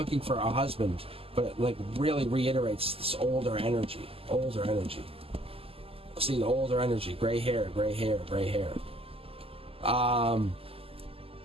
for a husband, but it like really reiterates this older energy. See, the older energy, gray hair.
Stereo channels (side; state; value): left; late; 0.28 ms